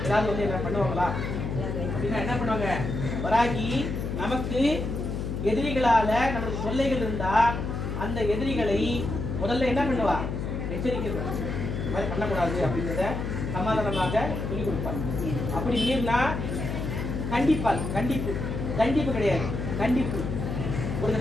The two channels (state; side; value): noise; left; hum, 3 dB below the sound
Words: ஏதாவது வந்து என்ன பண்ணுவாங்களா அப்படின்னா என்ன பண்ணுவாங்க? வராகி நமக்கு எதிரிகளால நமக்கு தொல்லைகள் இருந்தா அந்த எதிரிகளை முதல்ல என்ன பண்ணுவா? எச்சரிக்கை. இந்த மாதிரி பண்ணக்கூடாது அப்படின்றத சமாதானமாக சொல்லிக் கொடுப்பார். அப்படி மீறினா கண்டிப்பால், கண்டிப்பு, தண்டிப்பு கிடையாது, கண்டிப்பு. ஒரு